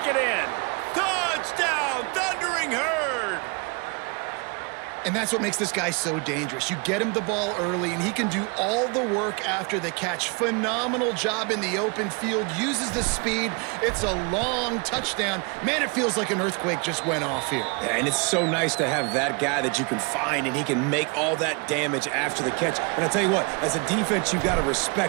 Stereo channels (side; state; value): left; quieter; 32.3 dB